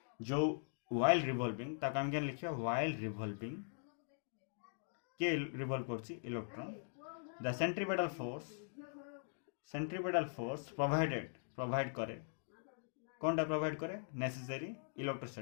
जो वाइल रिवॉल्विंग ताको आम क्या लिखा वाइल रिवॉल्विंग के रिवॉल्व करछि electron the centripetal force provide करे कौन टा प्रोवाइड करे नेसेसरी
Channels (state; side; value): silent; right; digital silence